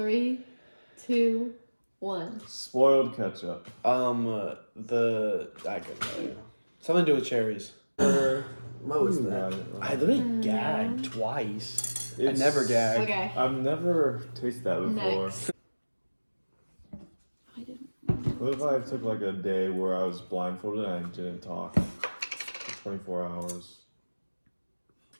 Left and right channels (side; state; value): both; inverted; correlation -1.00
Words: 2, 1. Spoiled ketchup. I couldn't tell you. Something to do with cherries. What was You that? got it wrong. I literally gagged twice. I It's- never gag. Okay. I've never tasted that before. Next. I didn't. What if I took like a day where I was blindfolded and I didn't talk for 24 hours?